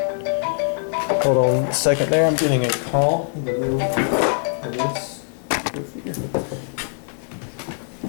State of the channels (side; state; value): right; silent; 64 dB below the other